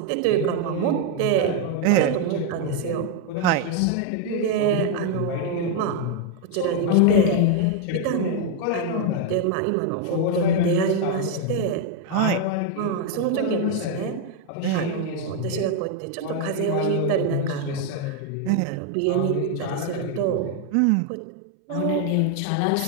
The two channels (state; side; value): different; both; correlation 0.01